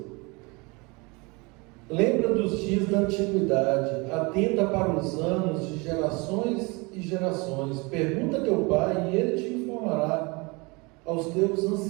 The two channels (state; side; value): quieter; left; 27.3 dB